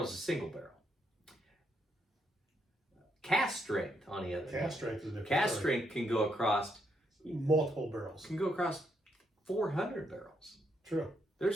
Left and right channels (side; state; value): both; normal; correlation 0.77